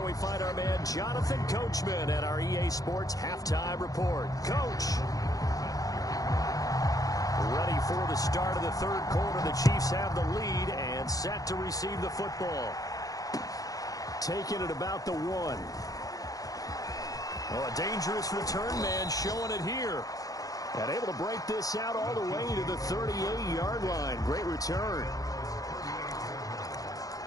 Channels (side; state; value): right; late; 0.17 ms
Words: we find our man Jonathan Coachman at our EA Sports Halftime Report. Coach. Ready for the start of the third quarter. The Chiefs have the lead and set to receive the football. Taking it about the 1. Oh, a dangerous return man showing it here. And able to break this out all the way to the 38-yard line. Great return.